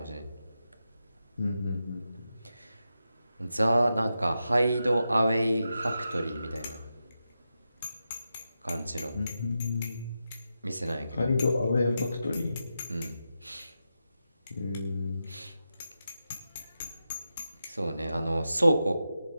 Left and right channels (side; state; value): both; inverted; correlation -0.88